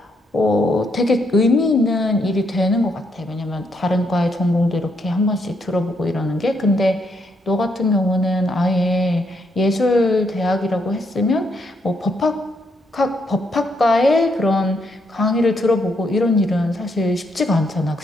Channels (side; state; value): both; normal; correlation 0.76